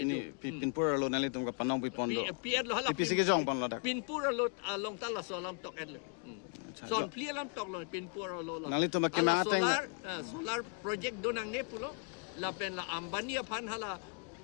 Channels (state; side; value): quieter; right; 38.9 dB